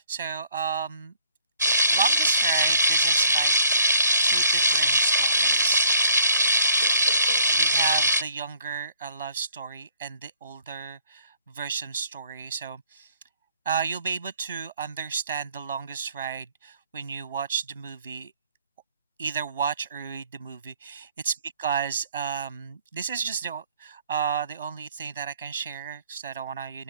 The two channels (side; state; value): both; inverted; correlation -0.59